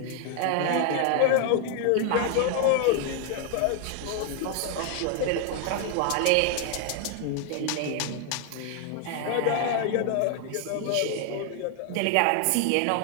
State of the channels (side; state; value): both; different; correlation 0.00